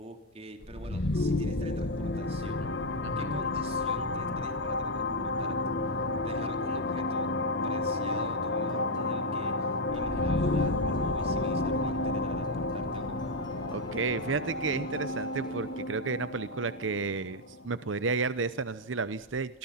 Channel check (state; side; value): normal; both; correlation 0.02